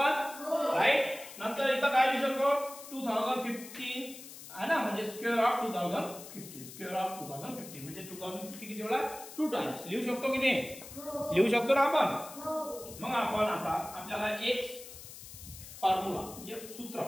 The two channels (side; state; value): left; noise; hiss, 14 dB below the sound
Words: राईट। नंतर इथं काय लिहू शकतो, 2015 आहे ना, म्हणजे स्क्वेअर ऑफ 2015, स्क्वेअर ऑफ 2015 म्हणजे 2015 किती वेळा, 2 टाइम्स लिहू शकतो की नाही, लिहू शकतो ना आपण। मग आपण आता आपल्याला एक फॉर्म्युला म्हणजे सूत्र